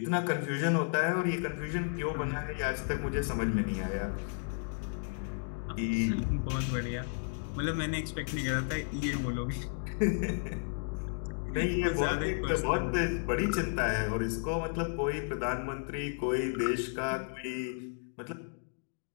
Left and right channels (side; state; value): right; silent; digital silence